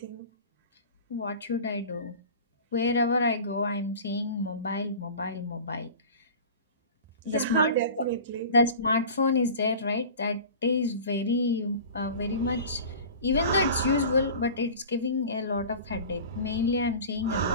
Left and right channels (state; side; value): inverted; both; correlation -0.38